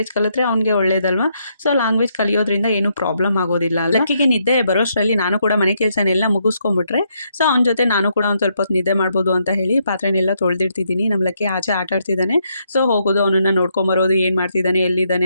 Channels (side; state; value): both; inverted; correlation -0.76